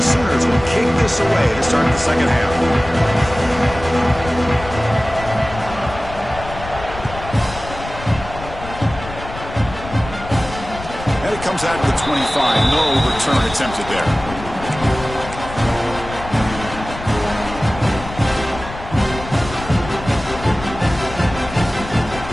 Sooners will kick this away to start the second half. And it comes out to the 25. No return attempted there.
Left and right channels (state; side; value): noise; left; rumble, 12 dB below the sound